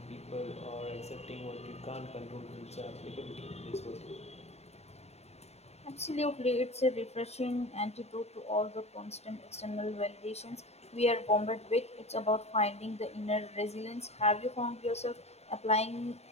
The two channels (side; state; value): right; late; 0.31 ms